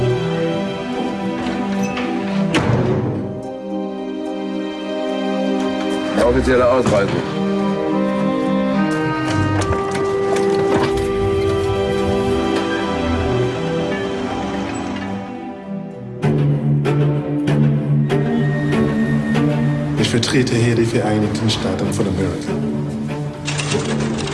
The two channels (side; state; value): both; identical; correlation 1.00